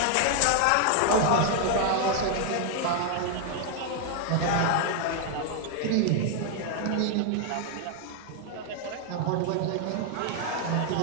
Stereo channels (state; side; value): different; both; correlation 0.00